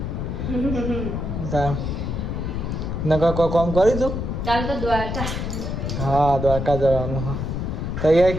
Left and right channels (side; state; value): left; noise; rumble, 3 dB below the sound